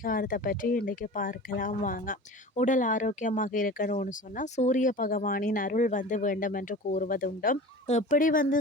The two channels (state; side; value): normal; both; correlation 0.36